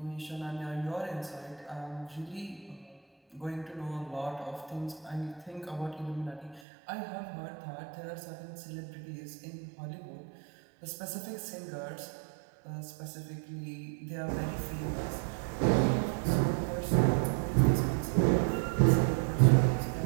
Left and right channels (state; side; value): drops out; left; at 6.6 s